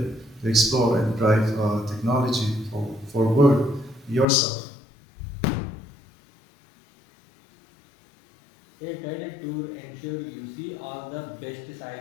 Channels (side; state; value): right; drops out; at 4.2 s